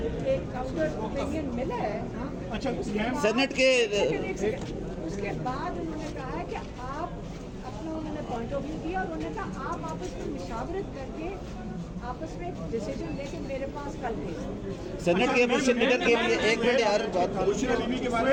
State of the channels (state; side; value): identical; both; correlation 1.00